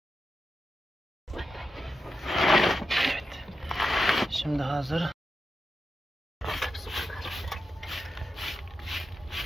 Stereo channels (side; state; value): both; normal; correlation 0.88